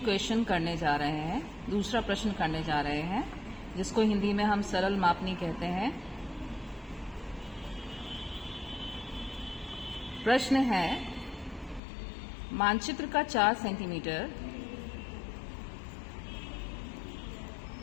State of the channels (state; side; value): drops out; right; at 11.8 s